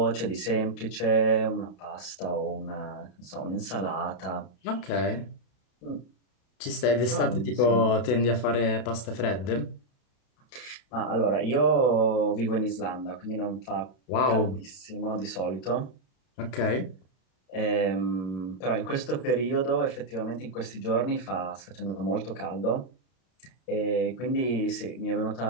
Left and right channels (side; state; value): right; late; 32 ms